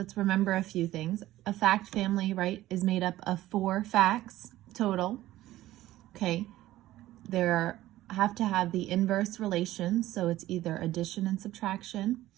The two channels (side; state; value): left; quieter; 15.3 dB